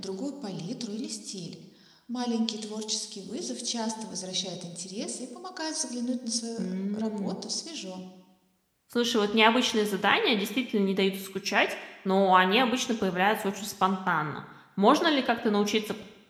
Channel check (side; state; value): both; identical; correlation 1.00